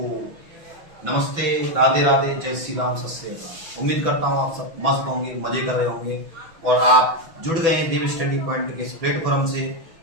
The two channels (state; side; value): late; left; 6.1 ms